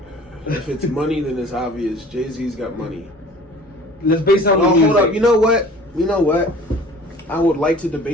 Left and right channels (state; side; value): normal; both; correlation 0.47